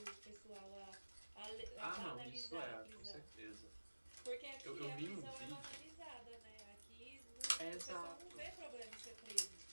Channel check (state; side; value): inverted; both; correlation -1.00